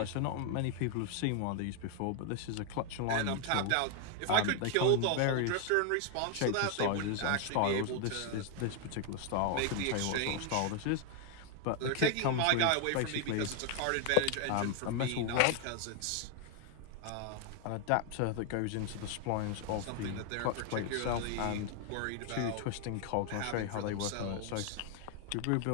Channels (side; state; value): both; different; correlation 0.01